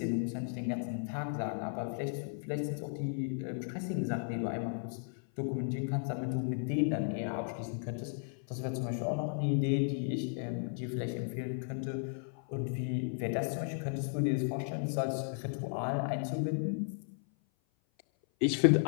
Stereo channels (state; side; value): silent; right; 54 dB below the other